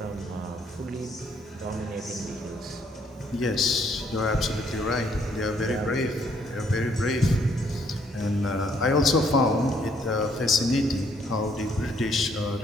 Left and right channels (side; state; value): both; normal; correlation 0.67